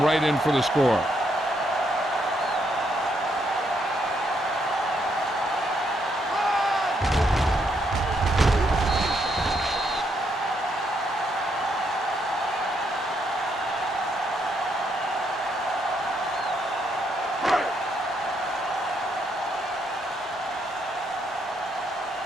right in for the score.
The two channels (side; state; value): both; normal; correlation 0.75